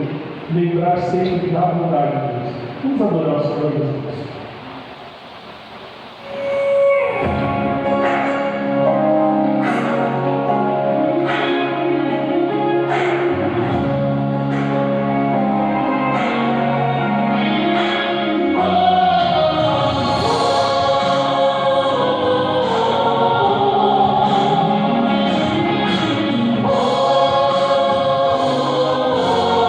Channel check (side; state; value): both; identical; correlation 1.00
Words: lembrar sempre da bondade de Deus. Vamos adorar o Senhor, meus irmãos.